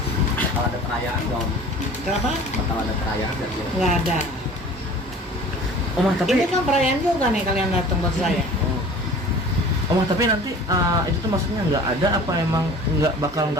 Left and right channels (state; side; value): normal; both; correlation 0.44